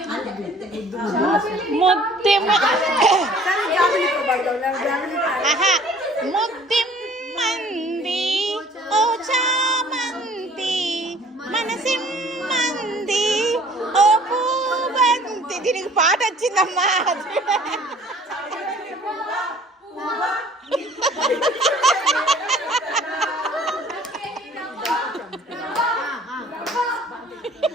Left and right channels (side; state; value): both; normal; correlation 0.53